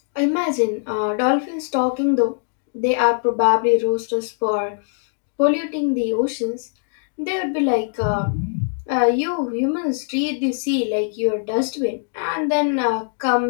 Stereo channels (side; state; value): right; silent; digital silence